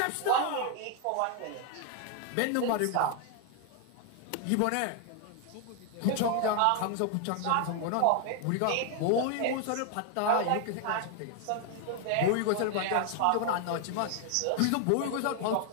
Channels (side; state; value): both; different; correlation 0.00